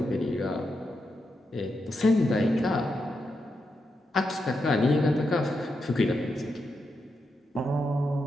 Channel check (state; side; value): normal; both; correlation 0.85